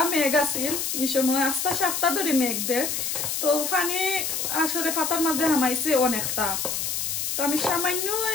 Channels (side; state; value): left; noise; hiss, 1 dB below the sound